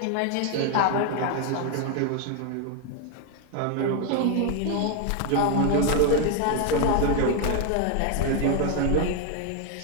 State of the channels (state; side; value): different; both; correlation 0.01